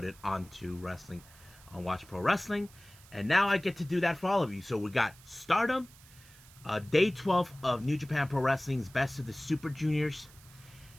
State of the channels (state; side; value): noise; right; hiss, 23 dB below the sound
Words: onto Wrestling on Watch Pro Wrestling, and now I get to do that for all of you. So we got Stardom, Day 12 of New Japan Pro Wrestling's Best of the Super Juniors,